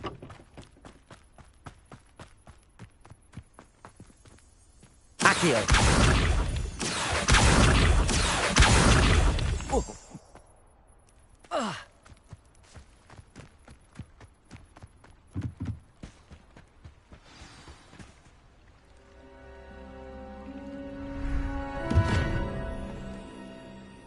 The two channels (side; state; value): both; identical; correlation 1.00